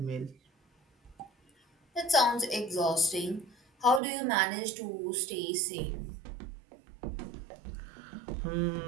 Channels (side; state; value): left; drops out; at 4.0 s